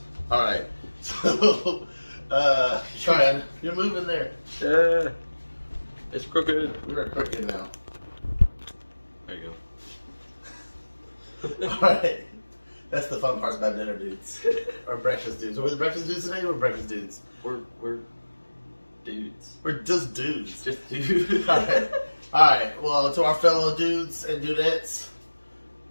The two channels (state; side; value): inverted; both; correlation -1.00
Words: Alright, so, Ryan, you're moving there. Yeah, it's crooked. We're crooked now. There you go. Alright. That's the fun part about dinner dudes. Or breakfast dudes. Are we the breakfast dudes today? We're breakfast dudes. We're dudes. We're just dudes. Just dudes. Alright, well, to our fellow dudes and dudettes,